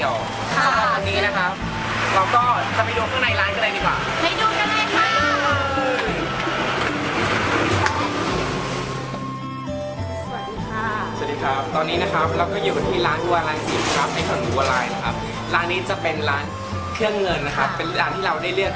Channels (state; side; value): identical; both; correlation 1.00